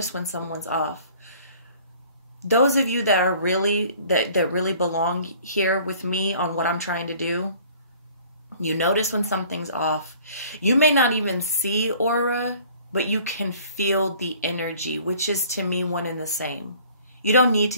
when someone's off. Those of you that are really, that really belong here with me on what I'm trying to do, you notice when something's off. You may not even see aura, but you can feel the energy, which is to me one and the same. You don't need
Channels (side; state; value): both; inverted; correlation -0.52